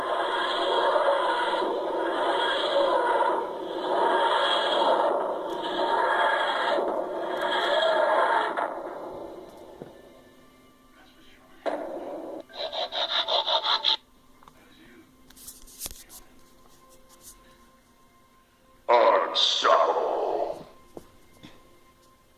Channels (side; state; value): both; identical; correlation 1.00